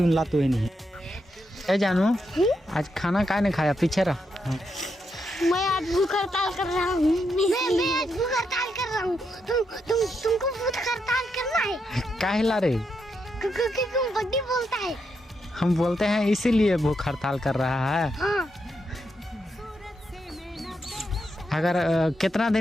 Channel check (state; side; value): normal; both; correlation 0.82